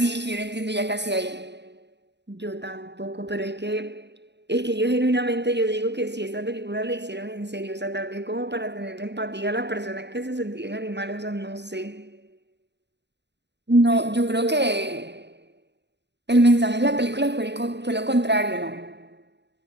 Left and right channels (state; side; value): late; left; 0.50 ms